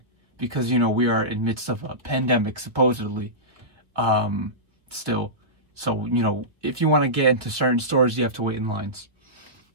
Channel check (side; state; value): left; late; 1.4 ms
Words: because you know we are in midst of a pandemic supposedly still. So, you know, if you want to get into certain stores, you have to wait in lines.